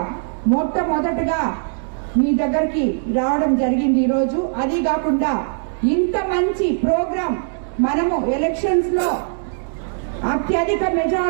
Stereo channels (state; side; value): silent; left; digital silence